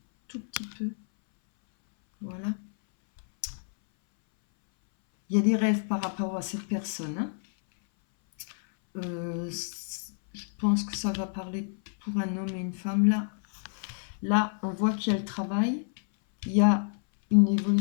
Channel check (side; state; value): right; silent; 59 dB below the other